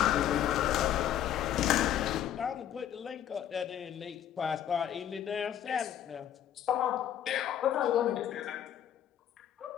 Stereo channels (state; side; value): quieter; right; 10.5 dB